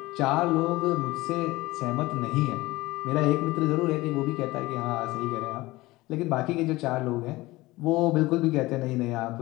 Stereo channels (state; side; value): quieter; right; 19.8 dB